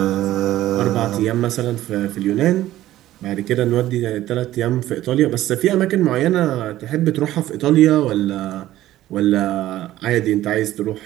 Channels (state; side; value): quieter; left; 14.4 dB